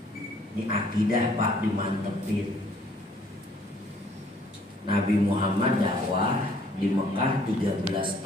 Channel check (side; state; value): both; normal; correlation 0.60